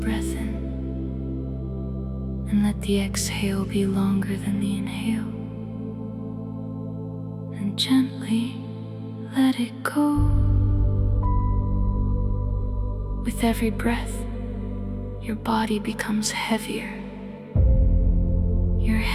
in and let the exhale be longer than the inhale. And gently let it go. With every breath, your body becomes heavier. Your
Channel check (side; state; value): both; identical; correlation 1.00